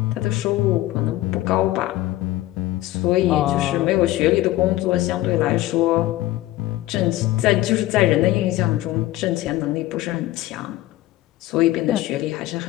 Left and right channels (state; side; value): quieter; right; 16.2 dB